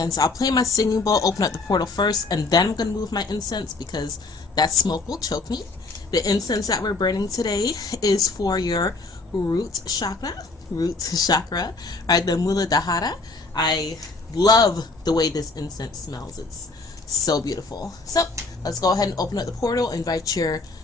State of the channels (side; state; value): right; quieter; 3.6 dB